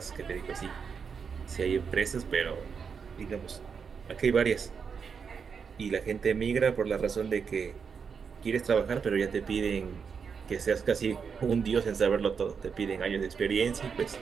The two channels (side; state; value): left; quieter; 6.2 dB